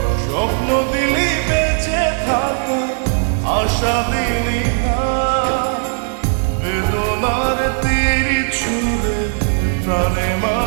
স্বপ্ন দিলি বেঁচে থাকা, আশা দিলি না, বেদনার তীর ছুঁড়ে প্রাণে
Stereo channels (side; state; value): left; silent; digital silence